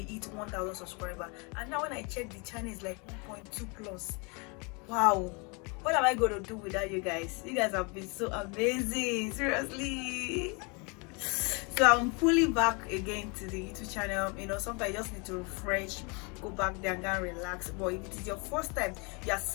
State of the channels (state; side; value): quieter; right; 31.6 dB